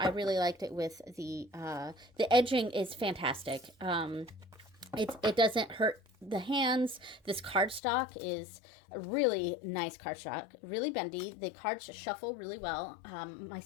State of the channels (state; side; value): drops out; right; at 7.8 s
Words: really liked it with the edging is fantastic. It doesn't hurt the hands. This cardstock is a really nice cardstock, really bendy. The cards shuffle really well. My